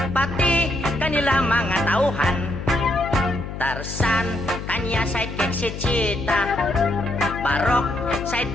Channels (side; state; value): left; noise; hum, 8 dB below the sound